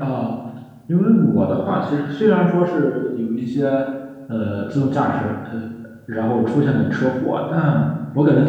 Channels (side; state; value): both; identical; correlation 1.00